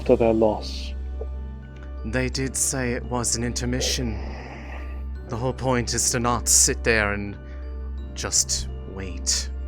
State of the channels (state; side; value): identical; both; correlation 1.00